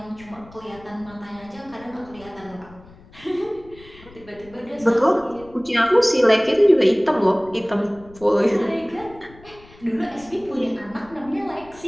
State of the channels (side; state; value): left; noise; rumble, 23 dB below the sound